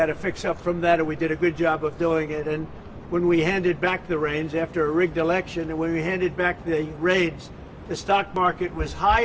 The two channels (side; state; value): both; identical; correlation 1.00